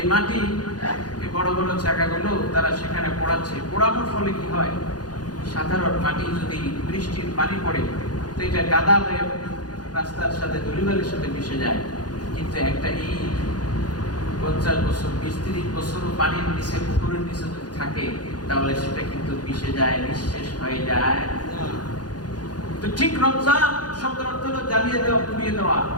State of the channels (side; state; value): right; late; 0.69 ms